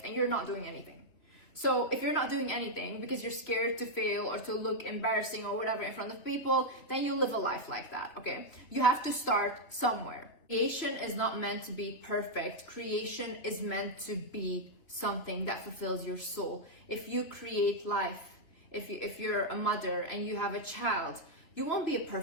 and you're not doing anything. So if you're not doing anything because you're scared to fail or to look embarrassing or whatever in front of people, then you live a life like that, okay? You have to start somewhere. Creation is not meant to be perfect. Creation is meant to be something that fulfills your soul. If you create life, if you're a mother and you have a child, you won't be a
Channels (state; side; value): late; right; 3.0 ms